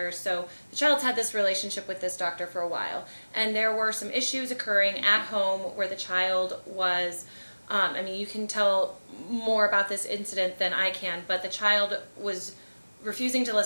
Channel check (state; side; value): inverted; both; correlation -1.00